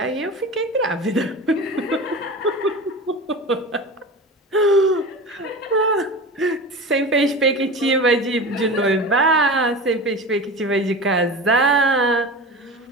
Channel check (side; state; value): both; normal; correlation 0.31